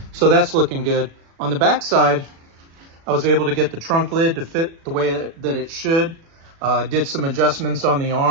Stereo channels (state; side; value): late; left; 36 ms